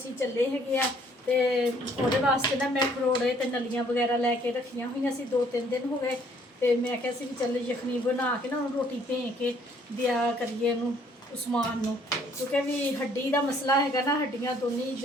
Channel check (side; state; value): both; normal; correlation 0.62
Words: चले है। तो वो वास्ते ना मैं खरोड़े तो नलियाँ वगैरह लैके रखिया हुई सी, 2-3 दिन हो गए। तो मैं क्या भी चल यखनी बना के ना रोटी भें के दिया करिए उस्मान नूं, क्योंकि भी हड्डी का मसला है ना, हड्डियाँ दोनों